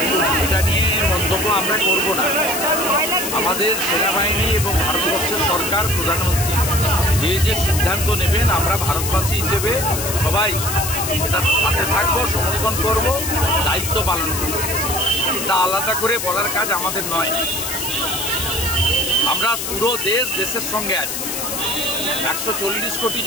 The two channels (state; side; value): noise; left; hiss, 4 dB below the sound